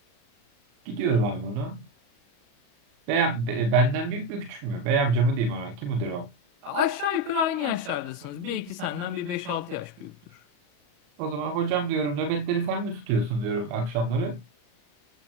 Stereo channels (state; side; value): late; left; 34 ms